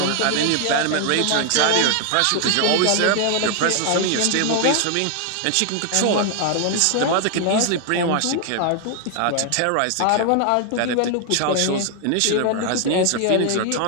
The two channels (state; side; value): different; both; correlation 0.00